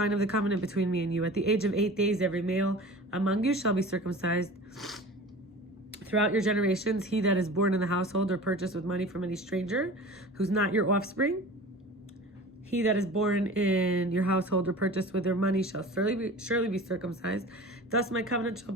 of the covenant between me and you. At the age of 8 days, every male among you shall be circumcised. Throughout your generations, he that is born in the household or purchased with money from any stranger, who's not your offspring, he that is born in your household or purchased with their money shall surely be circumcised. Thus my covenant shall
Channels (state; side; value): normal; both; correlation 0.38